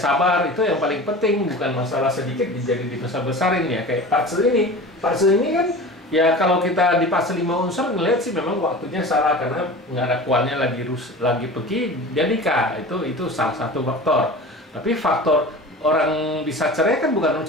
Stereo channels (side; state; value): both; normal; correlation 0.36